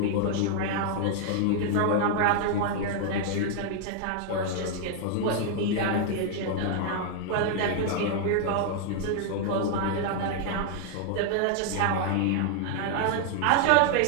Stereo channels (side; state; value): both; different; correlation 0.00